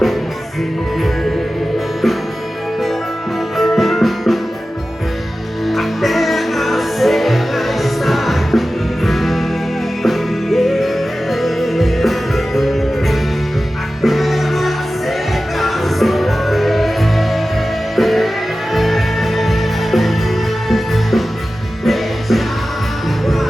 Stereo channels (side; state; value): both; normal; correlation 0.95